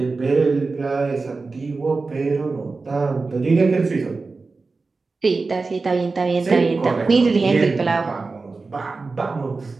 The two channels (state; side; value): quieter; left; 3.9 dB